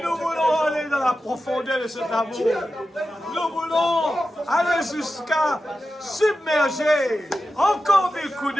nous voulons aller dans la profondeur de cet amour. Nous voulons aller jusqu'à submerger encore des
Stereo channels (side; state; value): both; normal; correlation 0.92